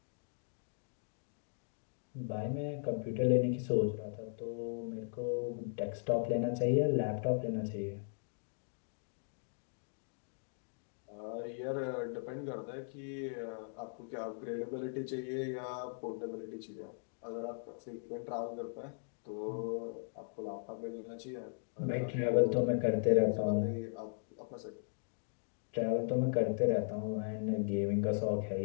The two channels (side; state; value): right; silent; digital silence